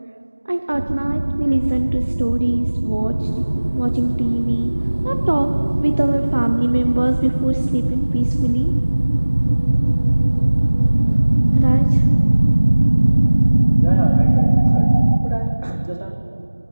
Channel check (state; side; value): inverted; both; correlation -1.00